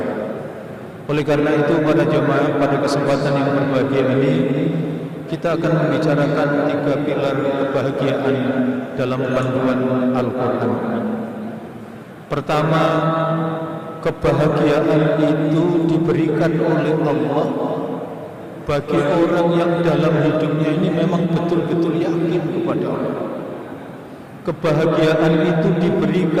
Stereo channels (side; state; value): both; identical; correlation 1.00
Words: Oleh karena itu, para jamaah, pada kesempatan yang berbahagia ini kita akan membicarakan 3 pilar kebahagiaan dalam panduan Al-Quran. Pertama, kebahagiaan itu diberikan oleh Allah bagi orang yang dalam hidupnya ini memang betul-betul yakin kepada Allah. Kebahagiaan itu